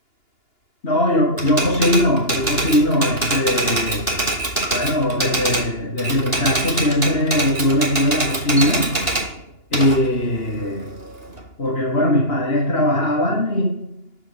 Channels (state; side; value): late; right; 2.9 ms